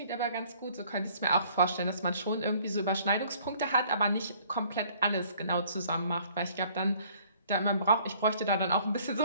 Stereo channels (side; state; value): both; inverted; correlation -0.58